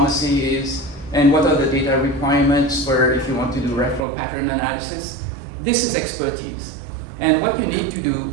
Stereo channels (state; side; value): drops out; left; at 4.0 s